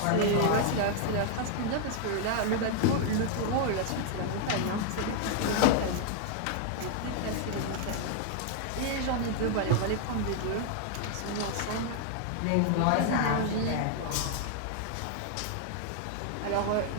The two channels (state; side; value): different; both; correlation 0.00